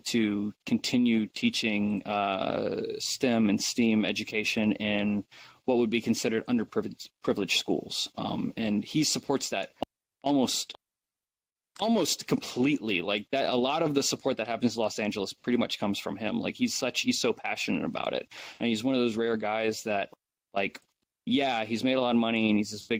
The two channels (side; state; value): both; identical; correlation 1.00